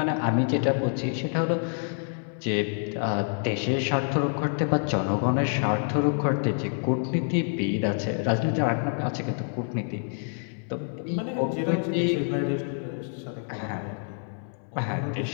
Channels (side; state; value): right; silent; 56 dB below the other